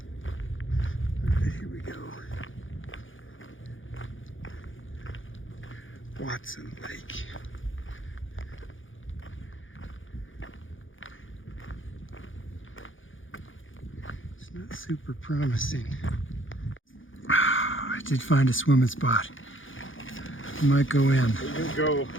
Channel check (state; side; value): late; right; 0.57 ms